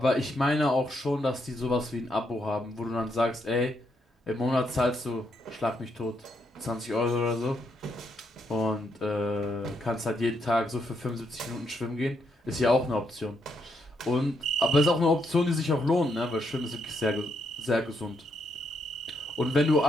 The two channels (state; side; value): normal; both; correlation 0.77